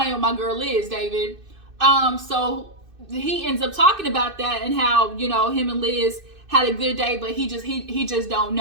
with my girl Liz, David. So he ends up talking about that and how, you know, him and Liz had a good day, but he just don't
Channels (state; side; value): late; left; 2.6 ms